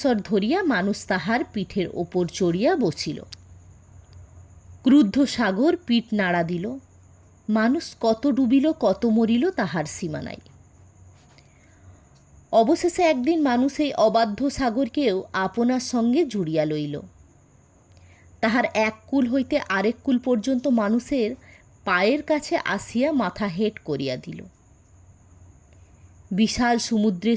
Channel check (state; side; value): identical; both; correlation 1.00